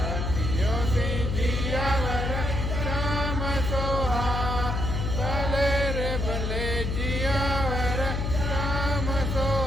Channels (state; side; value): noise; left; hum, 1 dB below the sound